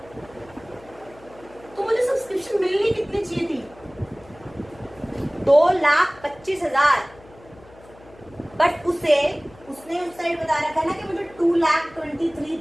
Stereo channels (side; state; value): left; noise; hum, 24 dB below the sound